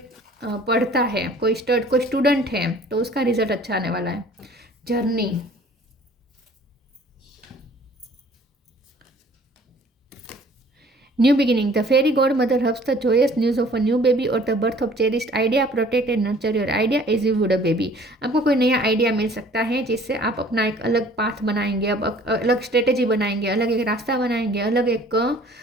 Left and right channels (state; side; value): normal; both; correlation 0.53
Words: पढ़ता है, कोई स्टूडेंट है तो उसका रिजल्ट अच्छा आने वाला है। Journey, new beginning, the fairy godmother hubs the joyous news of a new baby और the birth of cherished idea, protect and nurture your idea as you would a baby. आपको कोई नया idea मिल सकता है जिससे आप अपना एक अलग पाथ बनाएंगे, अब अलग स्ट्रेटेजी बनाएंगे, अलग एक रास्ता बनाएंगे, अलग एक